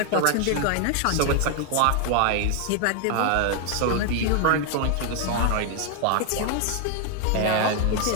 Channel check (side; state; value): both; different; correlation 0.00